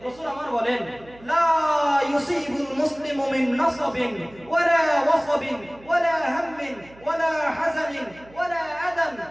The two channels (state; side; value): noise; right; hum, 24 dB below the sound